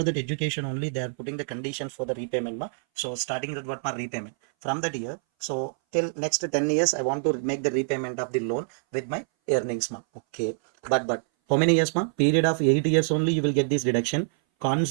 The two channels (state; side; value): silent; left; 59 dB below the other